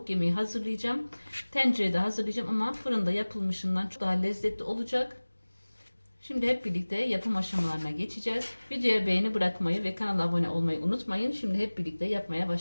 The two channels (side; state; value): both; inverted; correlation -1.00